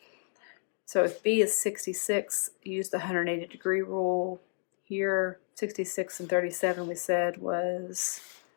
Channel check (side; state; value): right; silent; 57 dB below the other